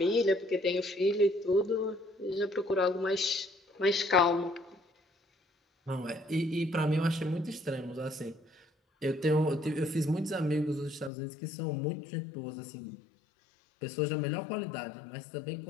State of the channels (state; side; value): drops out; right; at 11.1 s